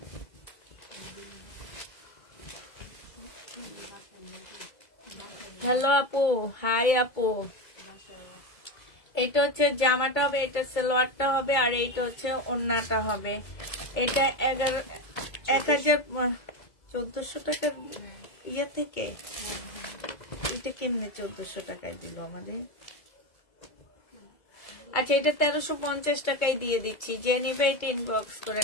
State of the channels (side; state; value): right; late; 2.0 ms